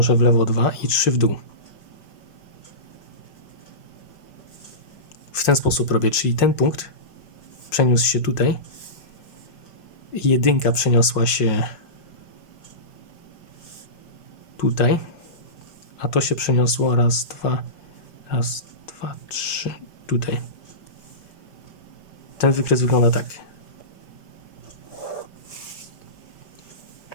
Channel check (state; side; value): late; right; 5.6 ms